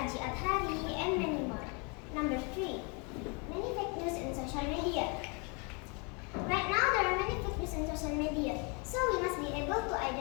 Aji Adhari, and many more. Number 3. Many fake news in social media. Right now, there are many fake news in social media, so we must be able to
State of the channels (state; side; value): quieter; right; 33.1 dB